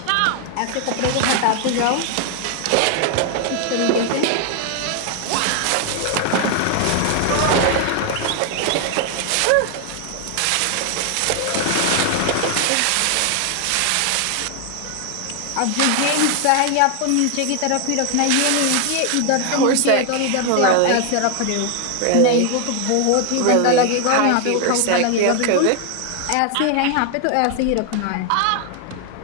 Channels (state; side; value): different; both; correlation 0.00